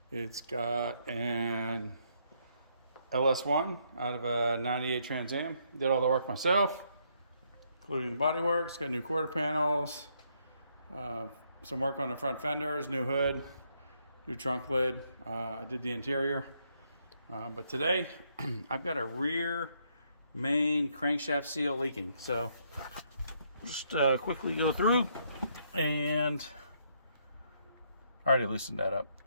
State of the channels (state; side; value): inverted; both; correlation -0.73